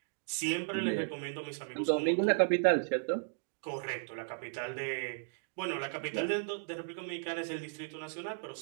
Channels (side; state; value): left; silent; digital silence